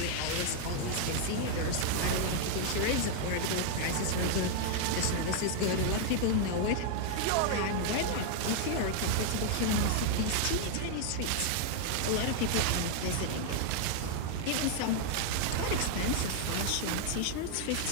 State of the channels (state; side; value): different; both; correlation 0.00